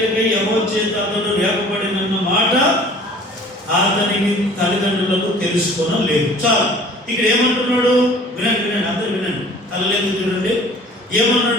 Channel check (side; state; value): both; normal; correlation 0.49